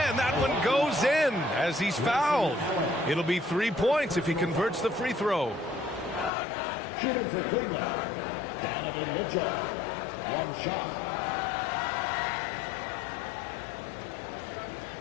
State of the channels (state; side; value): drops out; right; at 6.3 s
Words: that one goes in as he's fouled. It'll be 3 points if he converts the free throw. Shooting for Cleveland, Donovan Mitchell. One shot.